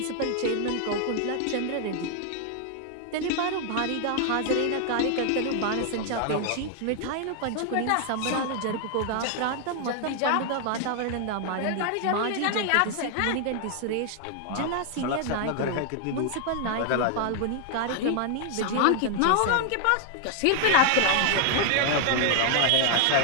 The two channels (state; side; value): different; both; correlation 0.00